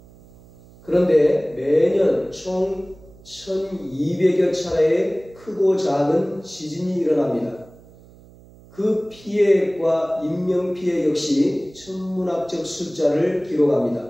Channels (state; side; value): noise; right; hum, 23 dB below the sound